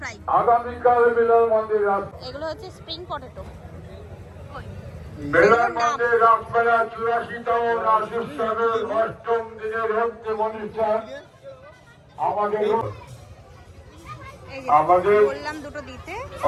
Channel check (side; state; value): both; identical; correlation 1.00